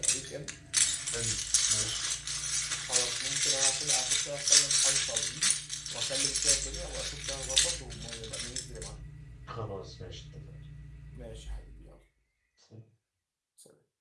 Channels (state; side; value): identical; both; correlation 1.00